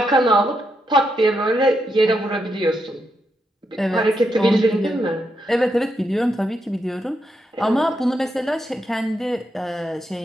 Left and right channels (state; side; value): normal; both; correlation 0.82